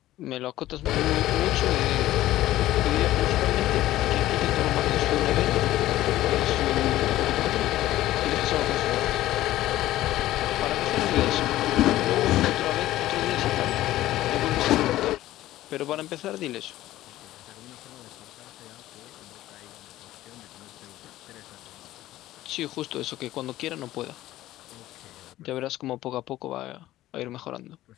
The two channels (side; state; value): right; quieter; 15.0 dB